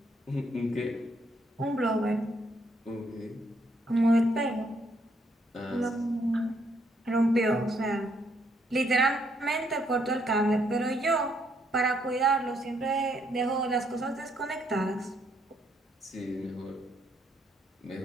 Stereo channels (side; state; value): both; normal; correlation 0.72